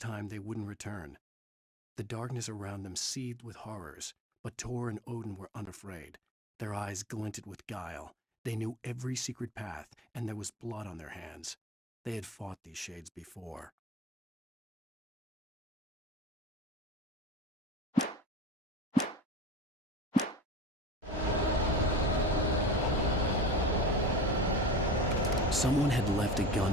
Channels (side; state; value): both; normal; correlation 0.34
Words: they wouldn't return. The darkness around them seethed with horrors, but Tor and Odin were unafraid. Their eyes glinted with guile. They knew every secret path, and there was blood on their hands. They had fought these shades before. Someone had left a